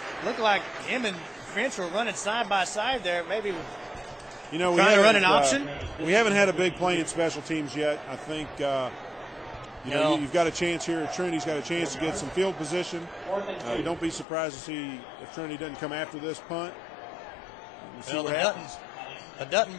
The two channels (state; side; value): drops out; right; at 14.2 s